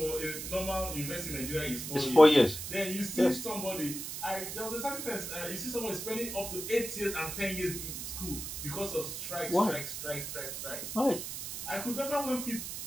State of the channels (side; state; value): right; noise; hiss, 6 dB below the sound